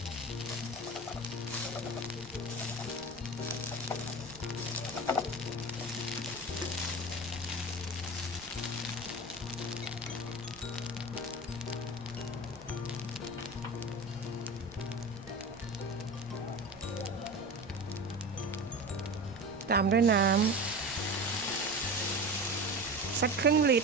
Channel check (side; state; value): right; noise; rumble, 20 dB below the sound